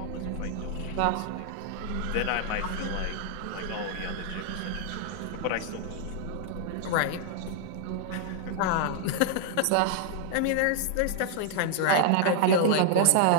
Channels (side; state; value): both; different; correlation -0.01